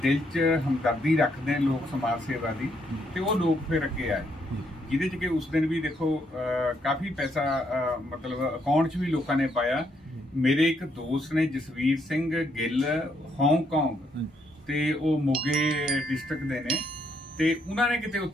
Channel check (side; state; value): both; normal; correlation 0.74